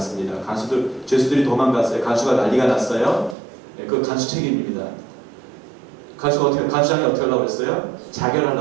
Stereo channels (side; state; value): left; drops out; at 3.4 s